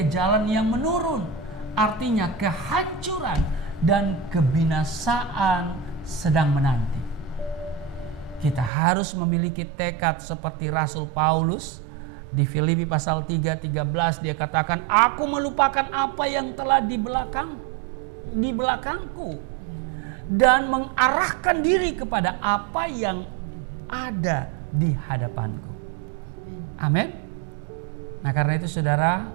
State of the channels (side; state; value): left; drops out; at 8.7 s